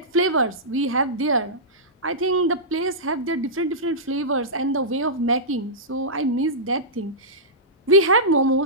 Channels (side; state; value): both; normal; correlation -0.16